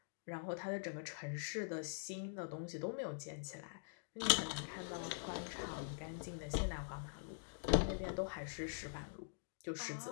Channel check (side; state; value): right; silent; digital silence